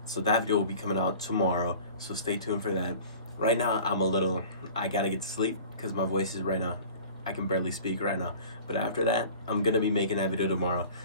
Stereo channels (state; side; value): inverted; both; correlation -0.43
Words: So that video will be coming out tomorrow, so stay tuned for that. Right now, I gotta get to sleep because my voice is right now. I can barely speak right now. But after that, I'm gonna be making that video tomorrow.